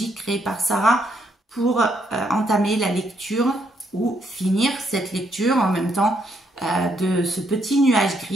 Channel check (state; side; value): normal; both; correlation 0.74